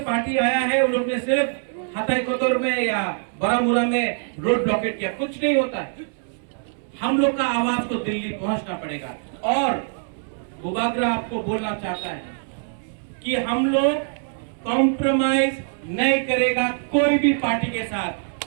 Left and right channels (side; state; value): left; silent; 63 dB below the other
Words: पार्टी आया है उन लोग ने सिर्फ हताईकोतोर में या बारामूला में रोड ब्लॉकेट किया, कुछ नहीं होता है। हम लोग का आवाज को दिल्ली पहुंचना पड़ेगा। और बुबागरा आपको बोलना चाहता है कि हम लोग कॉम्प्रोमाइज नहीं करेगा कोई भी पार्टी के साथ।